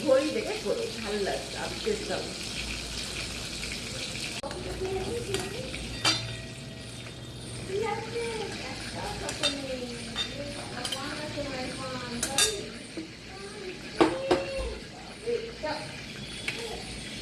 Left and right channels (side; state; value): both; identical; correlation 1.00